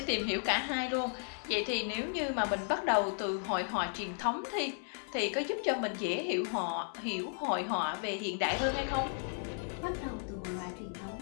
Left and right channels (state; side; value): silent; right; 55 dB below the other